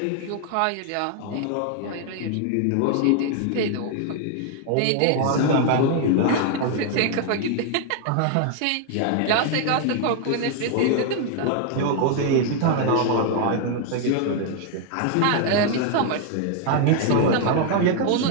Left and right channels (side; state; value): both; different; correlation 0.00